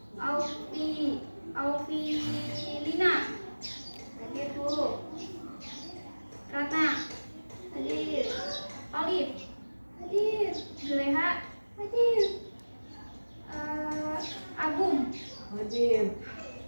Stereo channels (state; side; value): inverted; both; correlation -1.00